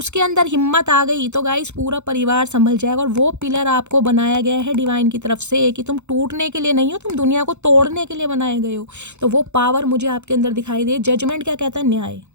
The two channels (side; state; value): left; late; 0.83 ms